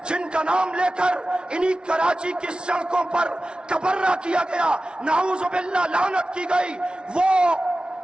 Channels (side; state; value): left; late; 0.056 ms